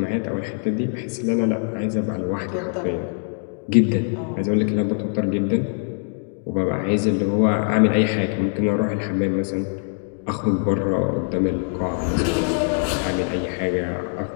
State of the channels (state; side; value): silent; right; 57 dB below the other